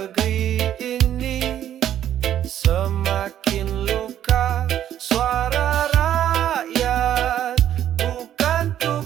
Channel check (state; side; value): quieter; left; 11.0 dB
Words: ini semakin luka. Suara rakyat bukan